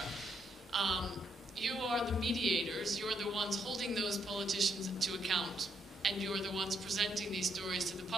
You are the mediators, you're the ones holding those politicians to account, and you're the ones presenting these stories to the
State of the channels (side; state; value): both; normal; correlation 0.75